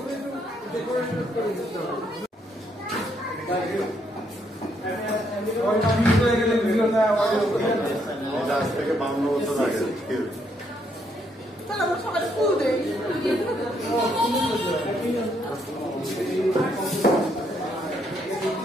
আজ থেকে 52 বছর আগে তাহলে আমরা সবাই ফুল দেই।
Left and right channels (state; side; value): normal; both; correlation 0.73